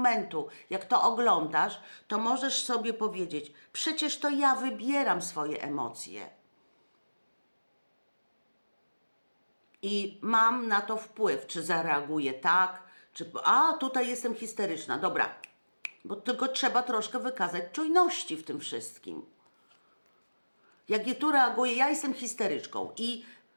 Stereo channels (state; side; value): inverted; both; correlation -1.00